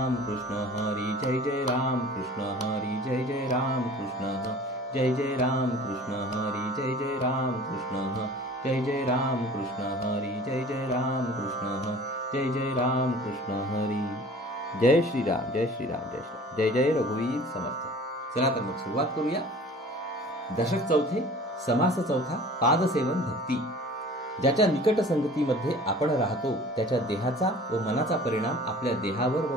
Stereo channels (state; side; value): normal; both; correlation 0.45